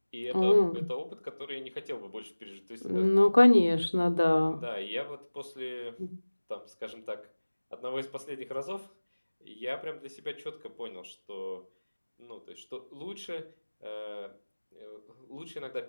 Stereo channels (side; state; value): both; inverted; correlation -1.00